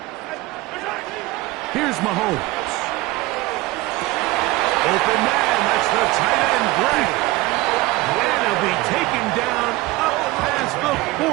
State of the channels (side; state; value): left; quieter; 19.7 dB